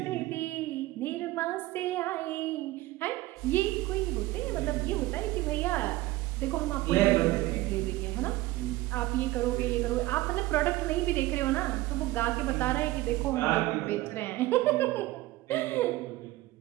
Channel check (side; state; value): left; quieter; 18.1 dB